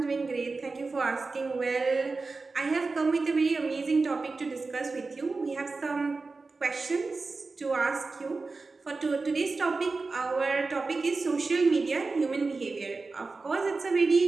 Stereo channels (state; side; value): quieter; left; 3.9 dB